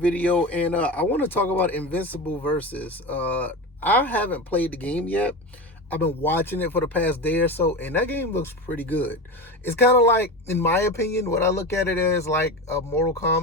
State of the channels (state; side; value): normal; both; correlation 0.24